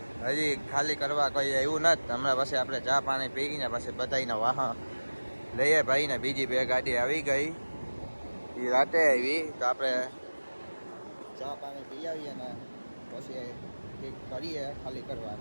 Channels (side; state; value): both; inverted; correlation -1.00